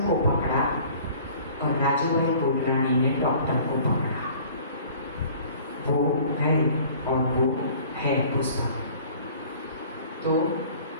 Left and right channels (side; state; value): both; inverted; correlation -0.49